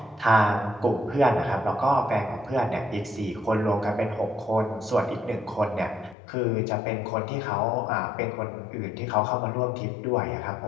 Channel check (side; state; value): right; drops out; at 6.2 s